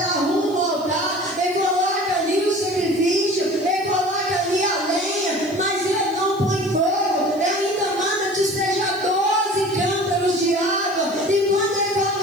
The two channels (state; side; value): noise; right; hiss, 25 dB below the sound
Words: arruma o altar, ele coloca ali o sacrifício, ele coloca ali a lenha, mas ele não põe fogo. Ele ainda manda despejar 12 cântaros de água. E quando ele